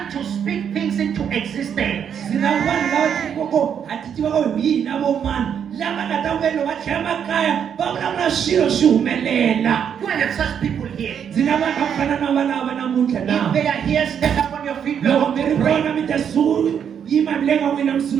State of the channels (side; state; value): left; quieter; 8.1 dB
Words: to speak things into existence. Sina vanhu lava tikoko a ti tivaka hi yini vo mani lava nga ta velo va tlhela makaya va vulavula swilo swi humelela. Do I have such people here? Ndzi na vanhu va fana na valava namuntlha If na. they are here, stand up on your feet. We Loko want mi to ri pray. kona mi ta yima mi le ka n'wina mi